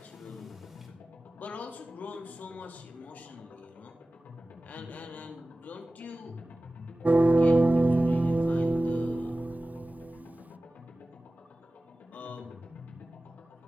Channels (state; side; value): normal; both; correlation 0.96